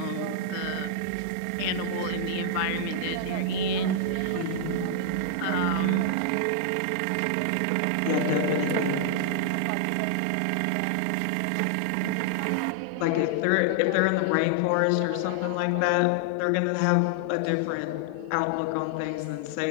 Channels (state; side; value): different; both; correlation -0.01